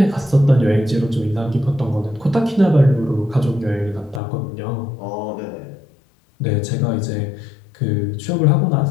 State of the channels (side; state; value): right; drops out; at 4.2 s